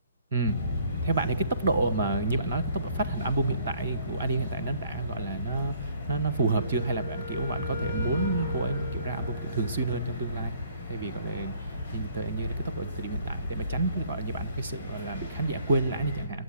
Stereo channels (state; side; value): inverted; both; correlation -0.60